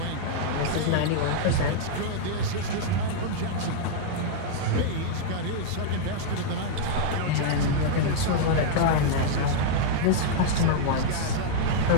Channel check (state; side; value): different; both; correlation -0.01